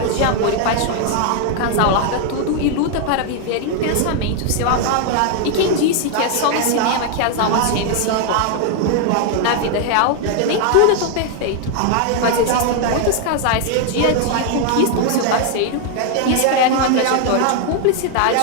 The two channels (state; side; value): different; both; correlation 0.00